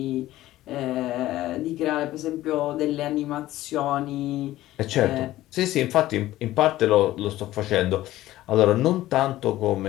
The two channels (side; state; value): right; quieter; 15.4 dB